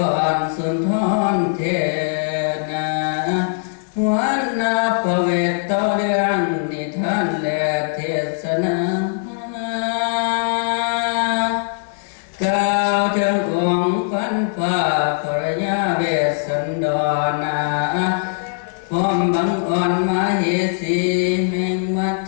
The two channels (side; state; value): right; silent; digital silence